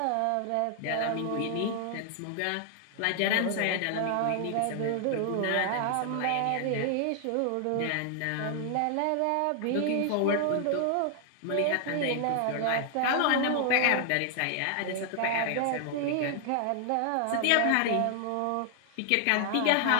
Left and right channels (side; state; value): both; different; correlation 0.00